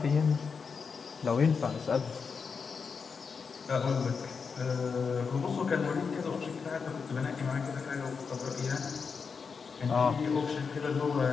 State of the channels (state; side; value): quieter; right; 5.5 dB